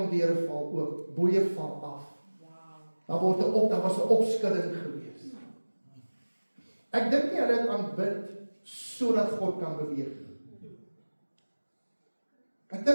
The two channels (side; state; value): both; inverted; correlation -1.00